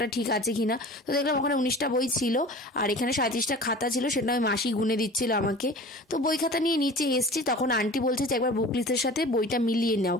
ঠিক আছে কিনা। তো দেখলাম ওখানে 19টা বই ছিল আর এখানে 37টা খাতা ছিল, সেটা আমি মাসি গুনে দিচ্ছিল আমাকে। তো বই খাতা নিয়ে নিচে এসছি, তখন আন্টি বলছে যে একবার বুক লিস্টের সাথে বইটা মিলিয়ে নাও,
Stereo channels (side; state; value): both; normal; correlation 0.40